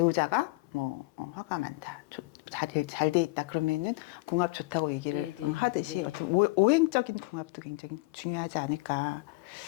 뭐 화가 많다, 잘 돼 있다 그러면은 궁합 좋다고 얘기를 네, 네, 하듯이 네. 어떤 오행적인 궁합도 굉장히 중요하지 않을까.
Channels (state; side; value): quieter; right; 23.5 dB